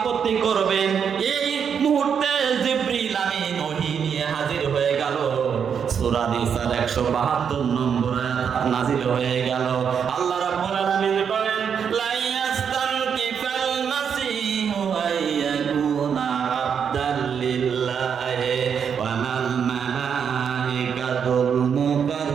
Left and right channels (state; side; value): quieter; left; 7.3 dB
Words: করবেন। এই মুহূর্তে জিবরিল আমিন ওহী নিয়ে হাজির হয়ে গেল। সূরা নিসার 172 নম্বর আয়াত নাযিল হয়ে গেল। আল্লাহ রাব্বুল আলামিন বলেন, লা ইয়াস্তানকিফাল মাসীহু আইয়াকুনা আবদাল লিল্লাহি ওয়া মাল মালাইকাতুল